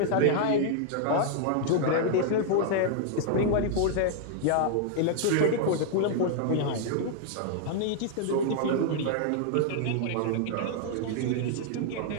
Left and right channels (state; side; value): different; both; correlation 0.00